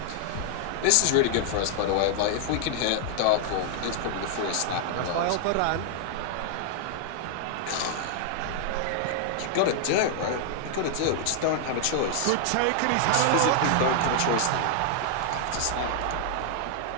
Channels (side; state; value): both; different; correlation 0.00